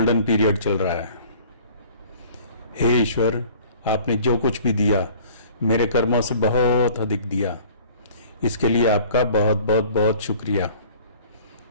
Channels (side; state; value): both; inverted; correlation -0.49